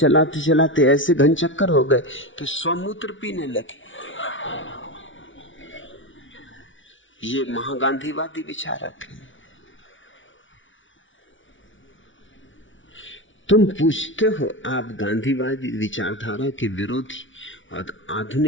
चलाते ऐसे घन चक्कर हो गए कि स्वमूत्र पीने लगे। ये महागांधीवादी विचारक हैं। तुम पूछते हो, आप गांधीवादी विचारधारा के विरोधी और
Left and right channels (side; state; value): right; late; 0.56 ms